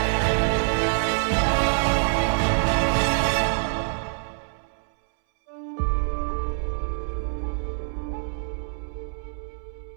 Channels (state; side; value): silent; left; 61 dB below the other